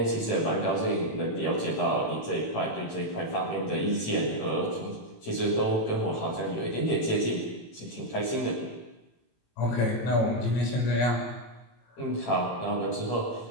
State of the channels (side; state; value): right; late; 18 ms